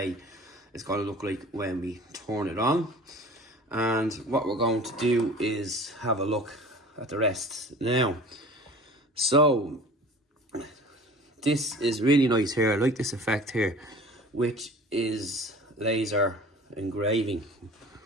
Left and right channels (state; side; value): normal; both; correlation 0.43